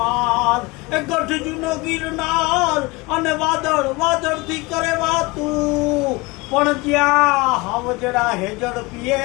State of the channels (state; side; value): quieter; right; 24.0 dB